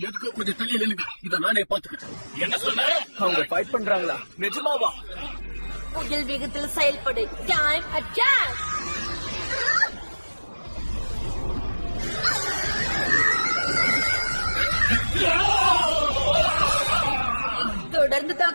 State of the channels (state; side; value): inverted; both; correlation -1.00